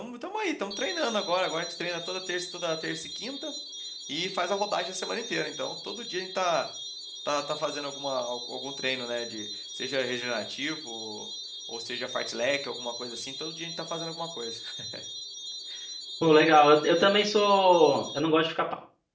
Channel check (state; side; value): identical; both; correlation 1.00